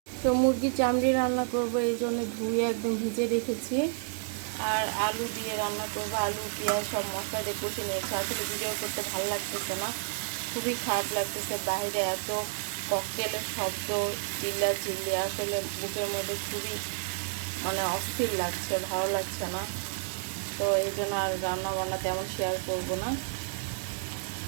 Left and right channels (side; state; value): left; silent; digital silence